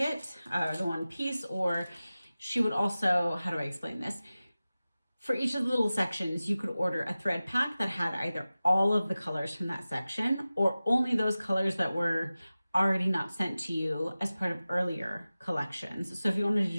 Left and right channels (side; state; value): both; inverted; correlation -0.96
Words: the one piece, or she would also, how do I explain this? For each of the little sections, you could order a thread pack that had either all of the colors from that section or only those colors that were already not sent to you as part of earlier collections. So if you wanted to